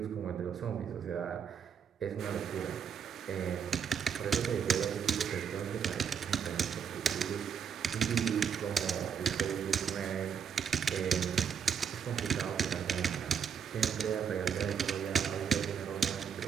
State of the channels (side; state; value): left; quieter; 7.3 dB